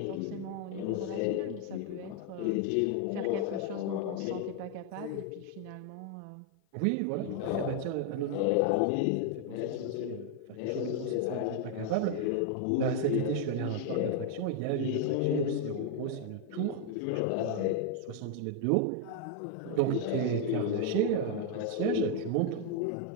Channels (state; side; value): different; both; correlation 0.00